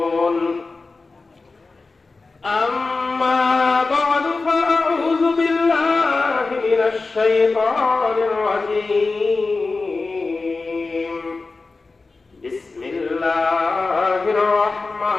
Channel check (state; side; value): quieter; right; 3.8 dB